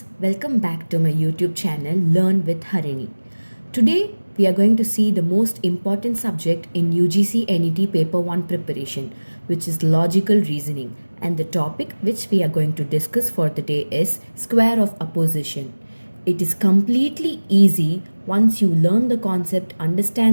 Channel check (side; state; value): both; inverted; correlation -1.00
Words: Welcome back to my YouTube channel, Learn with Harini. Today, we are going to see the most important subject in UGC NET Paper 1 preparation, which is logical reasoning. And the topic which we are going to discuss for the day is square of opposition. It is completely easy once you learn the concept,